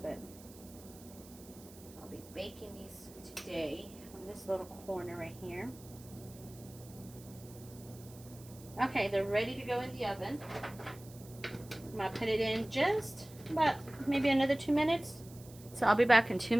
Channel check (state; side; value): noise; right; hiss, 20 dB below the sound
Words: I'll be baking these today on this little corner right here. Okay, they're ready to go in the oven. I'm going to put it in just about maybe another 2 minutes. So I'll be back in 2